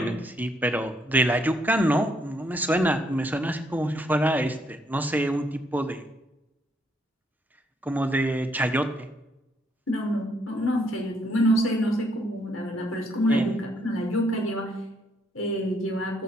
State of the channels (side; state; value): both; normal; correlation 0.72